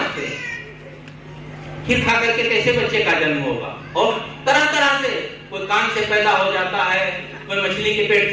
हैं। खीर खा करके कैसे बच्चे का जन्म होगा? और तरह तरह से, कोई कान से पैदा हो जाता है, कोई मछली के पेट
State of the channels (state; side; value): identical; both; correlation 1.00